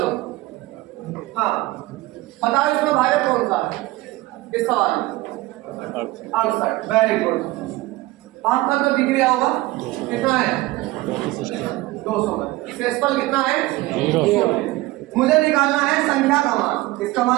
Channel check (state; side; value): quieter; left; 19.1 dB